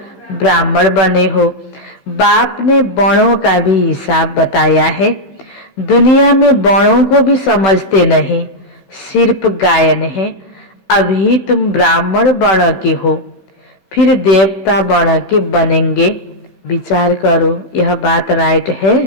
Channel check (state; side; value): late; right; 16 ms